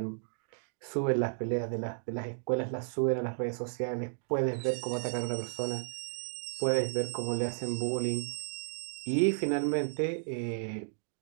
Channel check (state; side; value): silent; left; digital silence